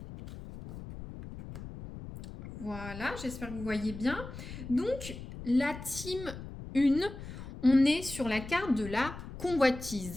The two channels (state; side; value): noise; left; rumble, 11 dB below the sound